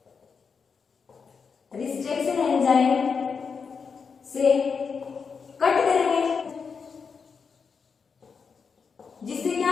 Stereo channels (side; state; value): right; quieter; 5.7 dB